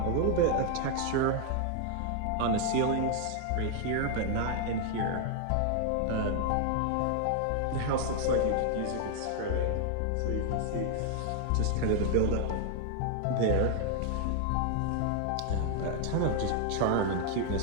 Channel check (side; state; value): both; different; correlation 0.00